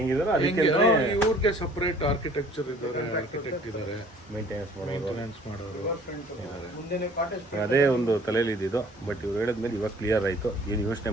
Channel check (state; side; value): normal; both; correlation 0.53